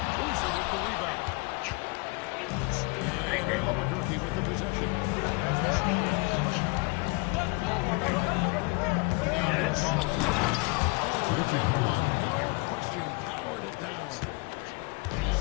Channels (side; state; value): right; quieter; 28.6 dB